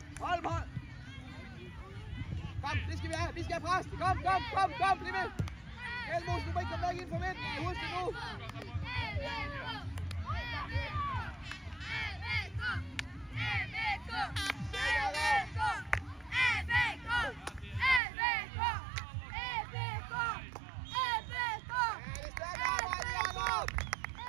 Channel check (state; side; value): drops out; left; at 18.0 s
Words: Hold, hold! Kom, det skal vi have, vi skal have pres! Kom, bliv med! Elmos, du må ikke komme væk ind for midten, husk det nu!